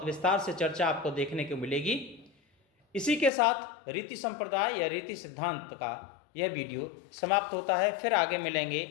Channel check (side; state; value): right; drops out; at 3.3 s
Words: विस्तार से चर्चा आपको देखने को मिलेगी। इसी के साथ रीति संप्रदाय या रीति सिद्धांत का यह वीडियो समाप्त होता है। फिर आगे मिलेंगे